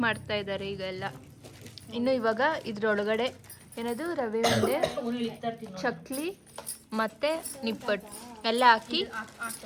ಮಾಡ್ತಾ ಇದ್ದಾರೆ ಈಗೆಲ್ಲ. ಇನ್ನು ಇವಾಗ ಇದ್ರೊಳಗಡೆ ಏನದು ರವೆ ಉಂಡೆ, ಚಕ್ಲಿ ಮತ್ತೆ ನಿಪ್ಪಟ್ಟು ಎಲ್ಲ ಹಾಕಿ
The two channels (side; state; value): both; identical; correlation 1.00